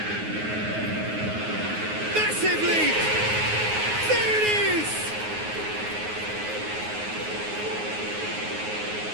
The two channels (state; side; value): late; left; 9.5 ms